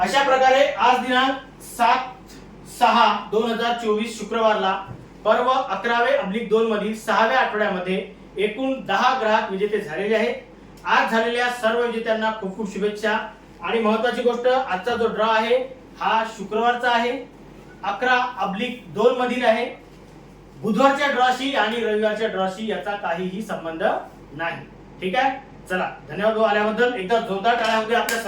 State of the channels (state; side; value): identical; both; correlation 1.00